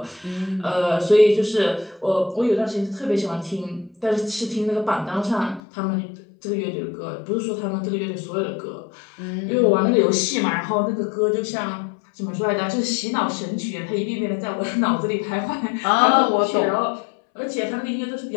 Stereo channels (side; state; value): right; drops out; at 5.6 s